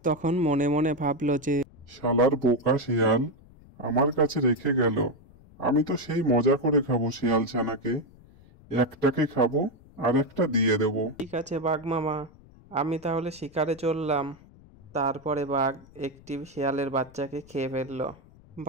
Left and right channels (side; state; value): left; noise; rumble, 24 dB below the sound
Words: তখন মনে মনে ভাবলো যে শালার বোকা শিয়াল আমার কাছে রেখে গেল। আমি তো সেই মজা করে খাবো শিয়াল ছানাকে। একটাকে খাবো আর একটা দিয়ে দেবো। ঠিক আছে বাঘ মামা, আমি তাহলে শিকারে চললাম। তারপরে বাঘ একটি শিয়ালের বাচ্চাকে খেয়ে ফেলল।